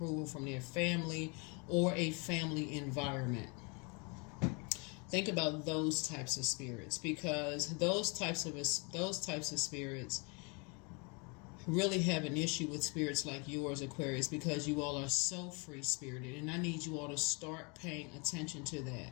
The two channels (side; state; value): right; quieter; 32.2 dB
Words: from their family or a family environment. Think about those types of spirits, because those types of spirits really have an issue with spirits like yours, Aquarius, because you all are so free spirited, and I need you all to start paying attention to that.